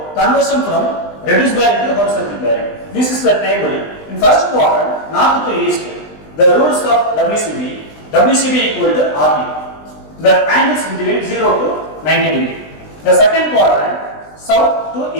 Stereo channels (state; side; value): late; right; 20 ms